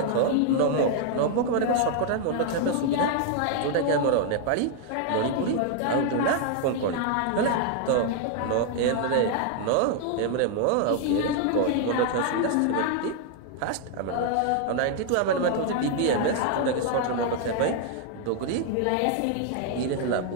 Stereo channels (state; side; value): different; both; correlation 0.00